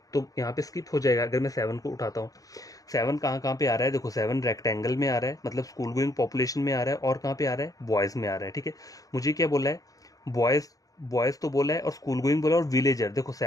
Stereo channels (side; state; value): right; late; 0.17 ms